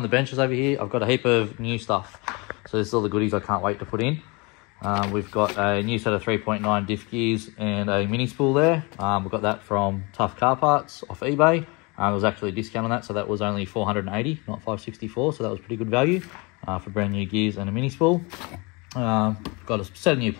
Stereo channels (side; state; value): right; quieter; 28.1 dB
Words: the benches over here, I've got a heap of new stuff. So this is all the goodies I can't wait to put in. We've got a new set of 3.9 diff gears and a mini spool there. We've got that from Tough Car Parts off eBay. There was actually a discount on that, so that was only $480, not $564, so that was pretty good value for brand new gears and a mini spool. Got a set of new